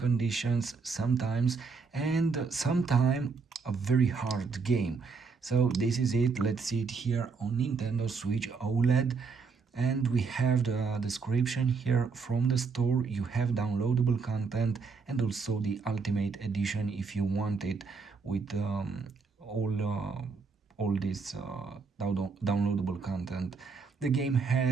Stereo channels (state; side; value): quieter; left; 4.9 dB